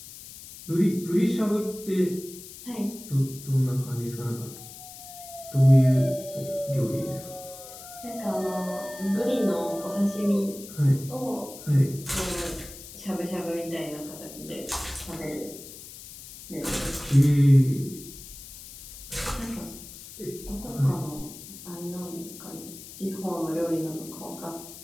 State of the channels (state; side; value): noise; left; hiss, 15 dB below the sound